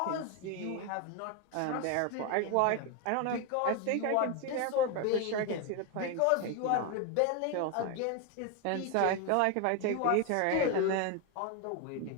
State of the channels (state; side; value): different; both; correlation 0.01